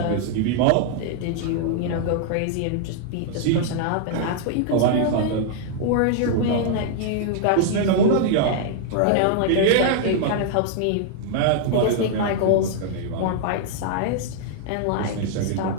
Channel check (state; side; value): different; both; correlation -0.01